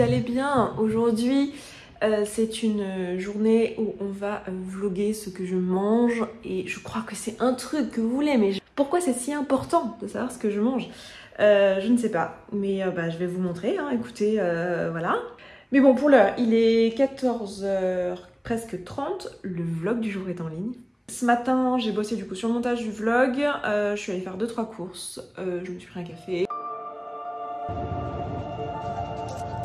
allez bien. Aujourd'hui, c'est une journée où on va vlogger ce que je mange et je crois que c'est un truc que vous voulez, mais pourquoi c'est si important de savoir ce que je mange? Je ne sais pas, mais je vais vous montrer, hein. Écoutez, voilà. Mais bon, pour l'heure, il est 14h presque 30, le vlog du jour est en ligne. Ce matin, j'ai bossé du coup sur le montage du vlog, je suis allée faire 2-3 courses, je me suis pris un café.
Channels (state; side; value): identical; both; correlation 1.00